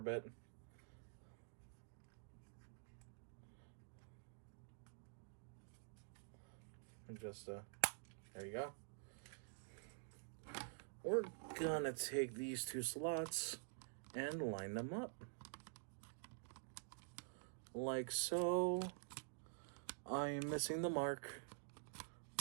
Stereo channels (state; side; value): silent; left; digital silence